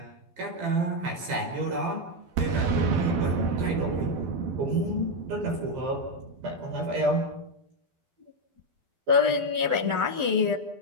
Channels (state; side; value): late; left; 12 ms